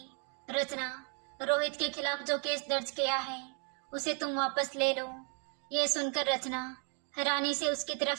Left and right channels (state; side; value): quieter; left; 38.2 dB